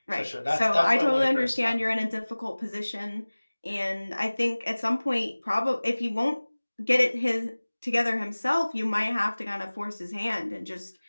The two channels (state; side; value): inverted; both; correlation -1.00